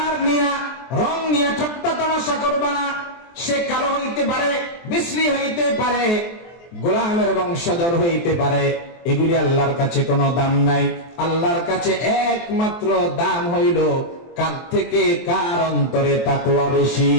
নিয়ে, রং নিয়ে ঠাট্টা তামাশা করবা না। সে কালো হইতে পারে, বিশ্রী হইতে পারে, গোলামের বংশধর হইতে পারে, এগুলি আল্লাহর কাছে কোনো দাম নাই। আল্লাহর কাছে একমাত্র দাম হইল কার থেকে কার অন্তরে তাকওয়া বেশি।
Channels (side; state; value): right; late; 23 ms